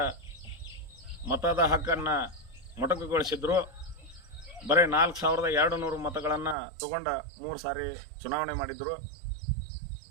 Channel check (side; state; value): left; drops out; at 6.6 s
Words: ಮತದ ಹಕ್ಕನ್ನು ಮೊಟಕುಗೊಳಿಸಿದ್ರು. ಬರೀ 4200 ಮತಗಳನ್ನು ತಗೊಂಡ 3 ಸಾರಿ ಚುನಾವಣೆ ಮಾಡಿದ್ರು.